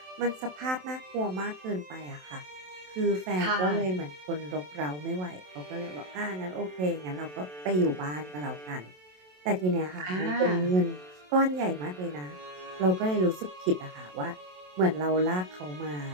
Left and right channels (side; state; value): left; late; 27 ms